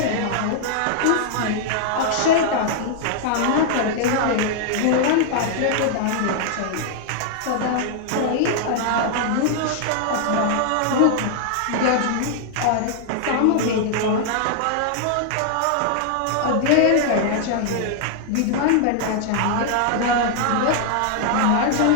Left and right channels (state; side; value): different; both; correlation -0.01